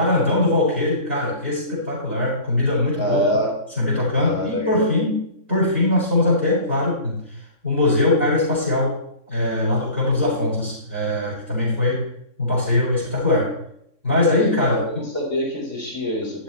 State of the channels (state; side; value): late; left; 3.6 ms